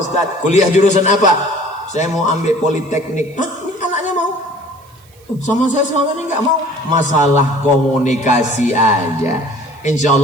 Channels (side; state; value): right; noise; hiss, 30 dB below the sound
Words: Ustadz. Kuliah jurusan apa? Saya mau ambil politeknik. Hah? Ini anaknya mau? Sama saya selama ini nggak mau. Masalah komunikasi aja. Insya